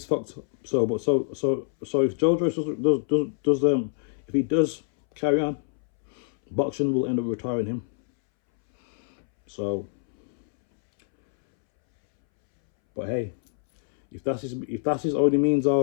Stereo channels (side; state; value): right; silent; 61 dB below the other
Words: fucked. So if Joe Joyce if he does carry on, boxing will end up retiring him. So, but hey, if that's his only means